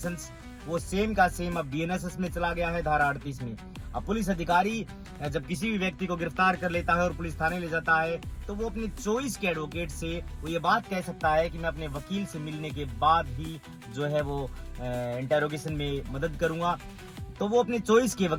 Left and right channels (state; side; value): identical; both; correlation 1.00